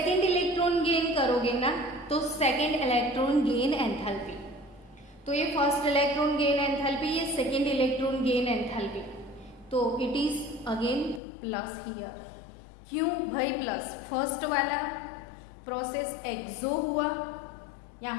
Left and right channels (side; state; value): right; drops out; at 11.2 s